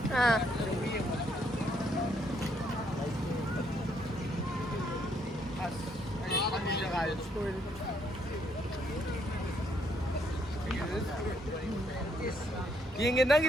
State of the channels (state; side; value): normal; both; correlation 0.72